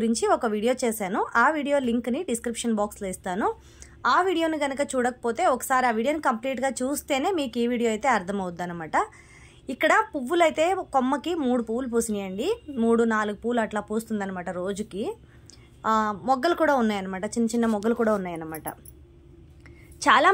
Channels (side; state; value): both; identical; correlation 1.00